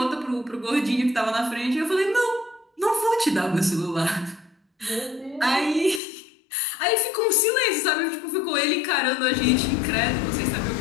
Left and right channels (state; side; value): drops out; right; at 6.0 s